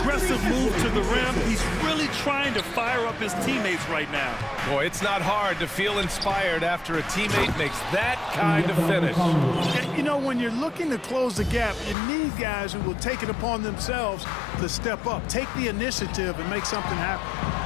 move to the rim. He's really trying to fire up his teammates right now. Boy, it's not hard to feel inspired after a teammate makes that kind of finish. You know, when you're looking to close the gap, you need guys who will take it upon themselves to step up, take the initiative, and make something happen.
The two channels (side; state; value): right; drops out; at 12.0 s